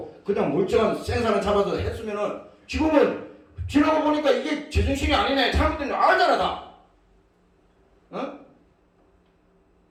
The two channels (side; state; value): both; identical; correlation 1.00